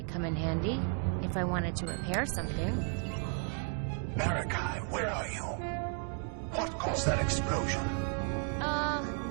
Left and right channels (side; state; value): left; quieter; 40.0 dB